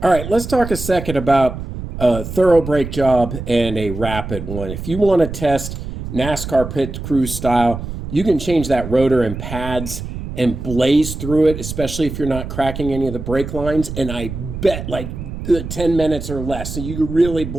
All right, let's talk a second about a thorough brake job and a rapid one. If you want to test NASCAR pit crew style, you can change that rotor and pads and blaze through it, especially if you're not cracking any of the brake lines. And I bet like 10 minutes or less, so you can really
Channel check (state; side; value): noise; right; rumble, 8 dB below the sound